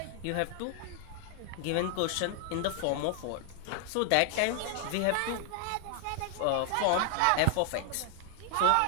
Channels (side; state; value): both; different; correlation 0.00